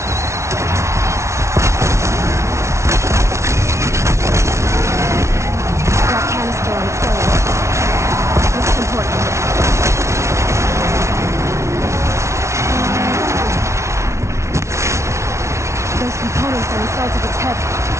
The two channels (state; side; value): late; left; 0.13 ms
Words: That canister on its way. This is important. Those components are inside of its head.